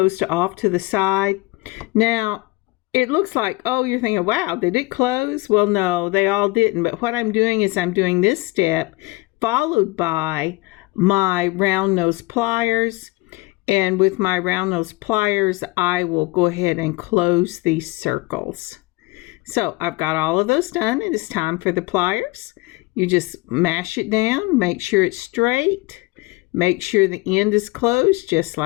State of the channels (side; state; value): right; quieter; 22.2 dB